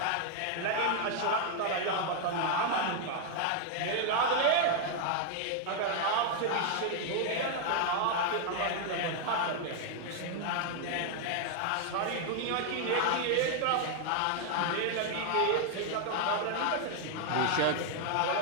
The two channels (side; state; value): both; different; correlation 0.00